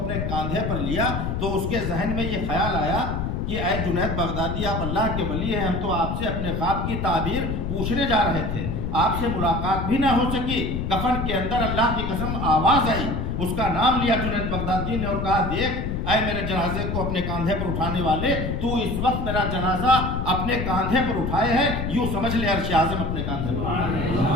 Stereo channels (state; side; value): noise; left; rumble, 2 dB below the sound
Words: کاندھے پر لیا تو اس کے ذہن میں یہ خیال آیا کہ اے جنید بغدادی آپ اللہ کے ولی ہیں، ہم تو آپ سے اپنے خواب کی تعبیر پوچھنے جا رہے تھے، آپ سے ملاقات بھی نہ ہو سکی۔ کفن کے اندر اللہ کی قسم آواز آئی، اس کا نام لیا جنید بغدادی نے اور کہا دیکھ اے میرے جنازے کو اپنے کاندھے پر اٹھانے والے، تو اس وقت میرا جنازہ اپنے کاندھے پر اٹھائے ہے، یوں سمجھ لے عرش اعظم اپنے کاندھے پر۔